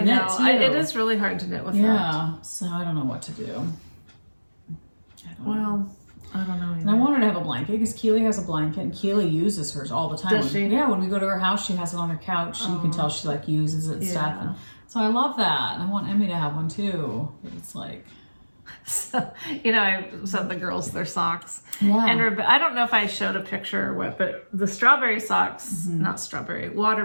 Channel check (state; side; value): inverted; both; correlation -1.00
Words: knit know. too. It is really hard to knit with that. Yeah. So I don't know what to do. I don't know. Well, I don't know. And I Either. want her to have a blanket because Keely has a blanket and Keely uses hers all the time. Does she? Yeah, when we go to her house, she has it on her couch. And you can tell she like uses it and stuff. Yeah. And so I love that. And I want Emmy to have one too. But it's like, So, I sent the girls their socks. Yeah. And I don't know if I showed a picture or what, but the strawberry socks, not strawberry,